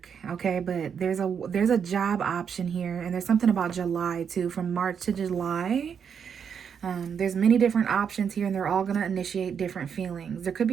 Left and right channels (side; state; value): left; quieter; 7.2 dB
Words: Okay, but there's a job option here, and there's something about July too, from March to July. There's many different options here, and they're all going to initiate different feelings. There could